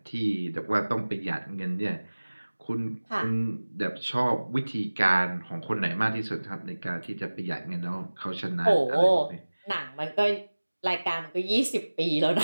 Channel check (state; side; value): inverted; both; correlation -1.00